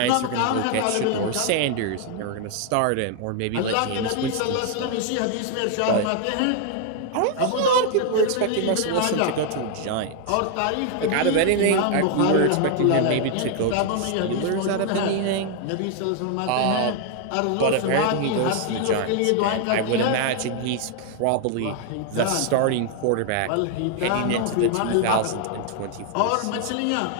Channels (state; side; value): different; both; correlation 0.00